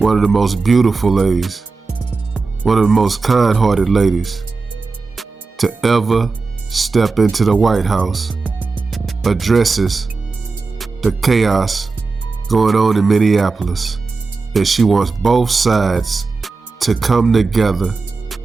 of the most beautiful ladies, one of the most kind-hearted ladies to ever step into the White House, addresses the chaos going on in Minneapolis, and she wants both sides to come together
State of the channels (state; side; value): quieter; left; 4.2 dB